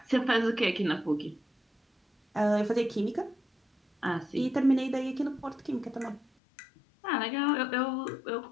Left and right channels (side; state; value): right; drops out; at 6.2 s